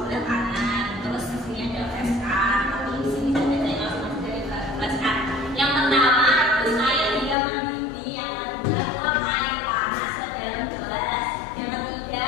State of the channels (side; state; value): right; drops out; at 7.4 s